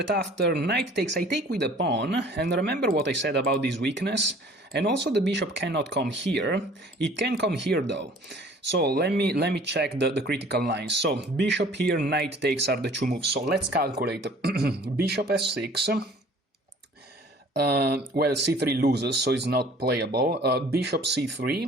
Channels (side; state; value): both; normal; correlation 0.51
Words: after knight takes, I take with a pawn, and remember what I said about this weakness? And also the bishop cannot come here. It can come here though. So let me check the critical lines. So bishop here, knight takes are the two moves. So let's calculate. Bishop f6. Well, c3 loses, so it's not playable. Bishop